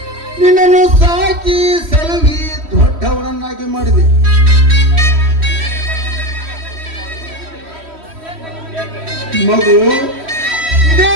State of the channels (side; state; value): left; late; 3.1 ms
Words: ನಿನ್ನನ್ನು ಸಾಕಿ ಸಲುವಿ ದೊಡ್ಡವರನ್ನಾಗಿ ಮಾಡಿದೆ. ಮಗು, ಇದೇ